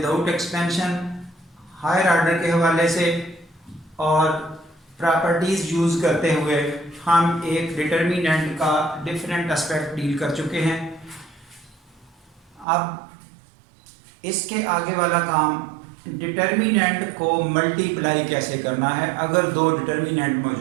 एक्सपेंशन, हायर ऑर्डर के हवाले से और प्रॉपर्टीज़ यूज़ करते हुए हम एक डिटर्मिनेंट का डिफरेंट एस्पेक्ट डील कर चुके हैं। अब इसके आगे वाला काम डिटर्मिनेंट को मल्टीप्लाई कैसे करना है अगर दो डिटर्मिनेंट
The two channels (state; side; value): drops out; left; at 12.7 s